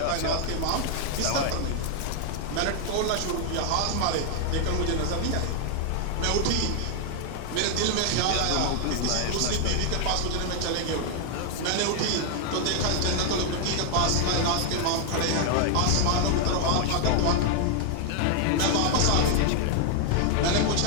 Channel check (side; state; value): both; different; correlation 0.00